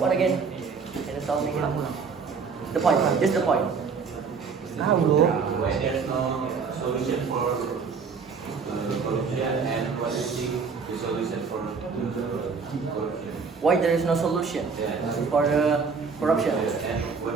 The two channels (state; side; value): quieter; left; 5.4 dB